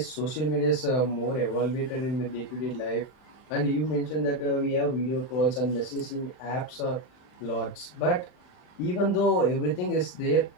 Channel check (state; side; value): late; right; 39 ms